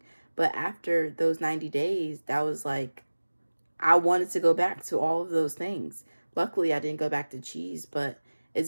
But after those 90 days, that was like, I wanted to go back to all of those things. Luckily, I didn't go back to cheese, but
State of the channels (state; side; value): inverted; both; correlation -1.00